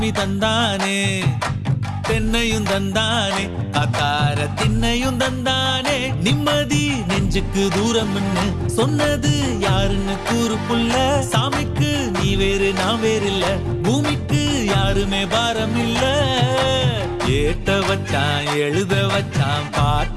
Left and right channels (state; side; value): identical; both; correlation 1.00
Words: தந்தானே தென்னையும் தந்தானே அத்தார திண்ணையும் தந்தானே நிம்மதி நெஞ்சுக்கு தூரம்னு சொன்னது யாருன்னு கூறு புள்ள சாமிக்கு நீ வேறு நான் வேறு இல்ல பூமிக்கு யாருமே பாரம் இல்ல ஏட்ட வச்சான் எழுத வச்சான்